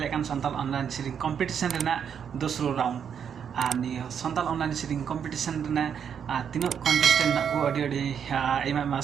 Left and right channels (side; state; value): left; quieter; 7.8 dB